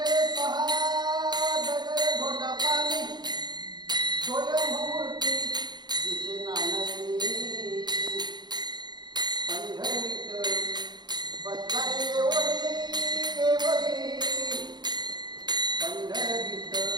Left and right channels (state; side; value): late; left; 0.21 ms